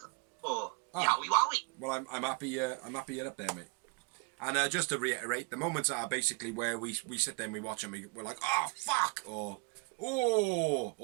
4. Ah. Yowie wowie. Well, I'm happy. I'm happy you're up there, mate. And just to reiterate, the moments are basically where we sit there and we watch and we're like, oh fuck, or oh,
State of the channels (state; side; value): quieter; left; 30.5 dB